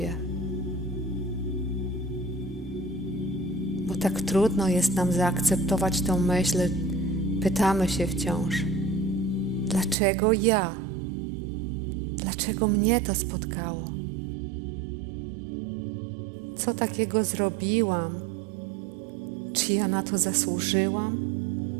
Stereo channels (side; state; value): left; drops out; at 10.0 s